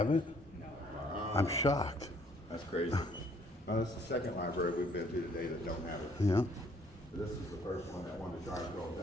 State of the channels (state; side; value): normal; both; correlation 0.63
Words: it? I'm shocked. That's crazy. This is the second library we've been to today that don't have it. Yeah. This is the first one that wanted to try and throw us